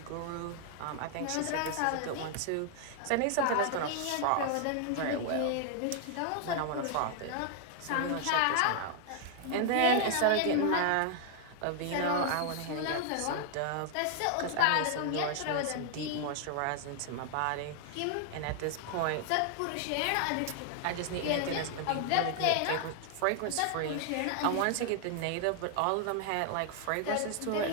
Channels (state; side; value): different; both; correlation 0.00